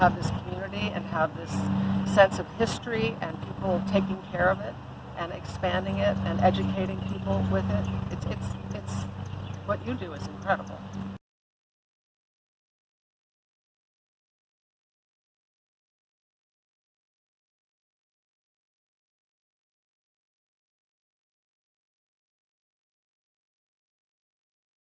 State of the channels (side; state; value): both; identical; correlation 1.00